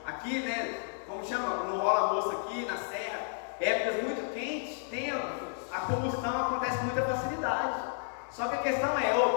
aqui, né? Como chama? Não rola moço aqui na serra. Épocas muito quentes, a combustão acontece com muita facilidade. Só que a questão é,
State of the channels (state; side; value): silent; right; digital silence